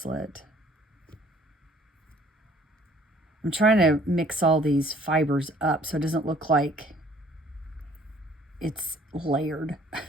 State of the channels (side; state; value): both; normal; correlation 0.57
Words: I'm trying to mix all these fibers up so it doesn't look like it's layered.